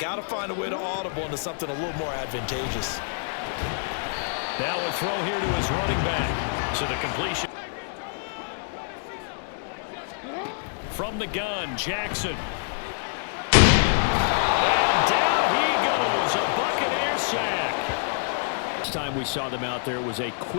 to find a way to audible into something a little more advantageous. Now a throw here to his running back. So the completion. From the gun, Jackson. And down he goes. A Buccaneer sack. Last time we saw them out there was a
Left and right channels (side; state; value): right; silent; 60 dB below the other